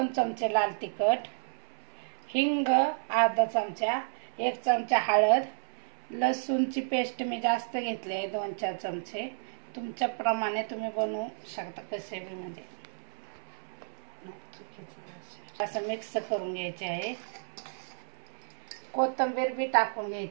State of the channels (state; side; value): silent; left; 57 dB below the other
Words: चमचे लाल तिखट, हिंग अर्धा चमचा, 1 चमचा हळद, लसूणची पेस्ट मी जास्त घेतली आहे 2-4 चमचे। तुमच्या प्रमाणे तुम्ही बनवू शकता कसे बी, म्हणजे असं मिक्स करून घ्यायचे आहे। कोथिंबीर बी टाकून